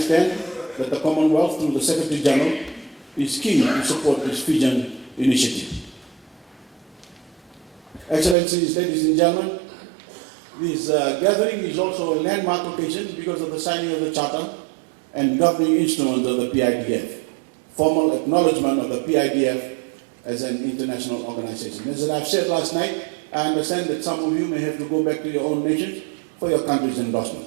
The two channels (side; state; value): left; drops out; at 8.3 s